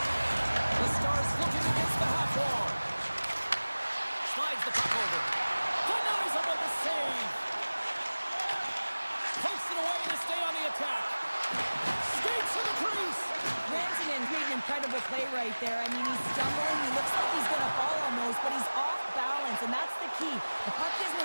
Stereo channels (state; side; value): inverted; both; correlation -1.00